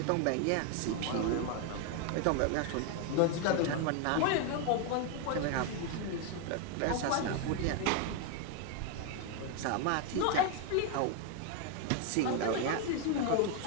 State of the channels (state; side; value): different; both; correlation 0.01